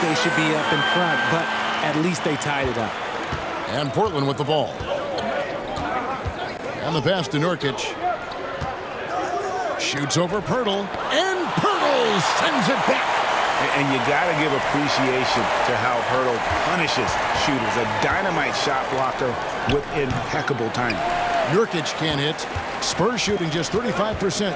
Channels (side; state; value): both; identical; correlation 1.00